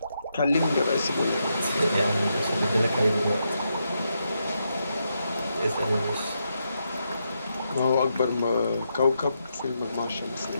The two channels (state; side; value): inverted; both; correlation -0.82